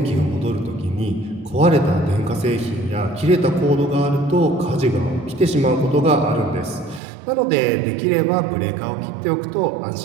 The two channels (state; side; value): drops out; left; at 7.0 s